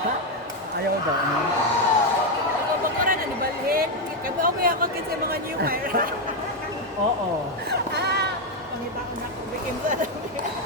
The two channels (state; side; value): normal; both; correlation 0.05